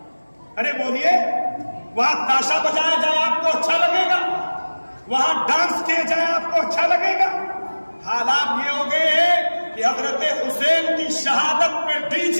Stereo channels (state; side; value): inverted; both; correlation -1.00